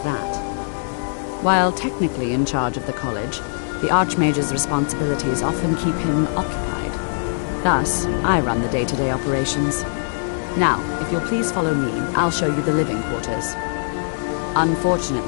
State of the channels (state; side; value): silent; right; digital silence